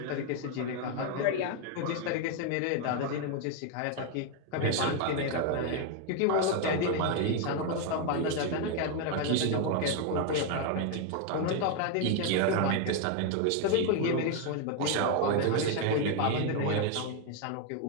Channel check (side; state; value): both; different; correlation 0.01